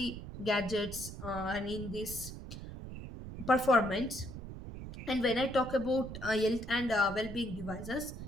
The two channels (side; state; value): right; noise; rumble, 10 dB below the sound